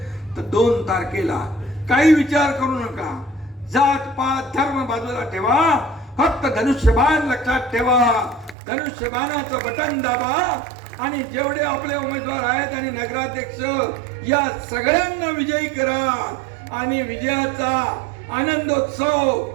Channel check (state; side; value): drops out; left; at 8.6 s